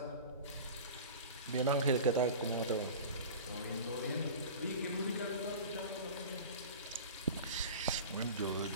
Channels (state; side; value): inverted; both; correlation -0.35